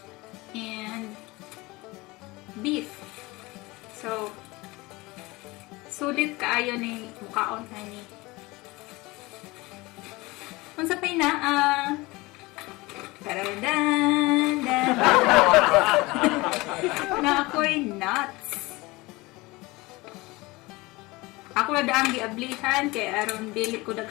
and beef. So, sulit kaayo ni mukaon ani. Unsa pay naa na ako'y nuts. Ako na daang giablihan kay aron dili ko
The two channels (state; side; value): quieter; right; 22.3 dB